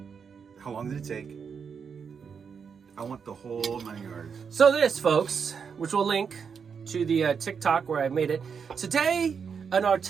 How long did it take? I want the whole 9 yards. So this, folks, which we'll link to the TikTok where I made it. Today, in our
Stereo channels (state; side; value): quieter; left; 6.4 dB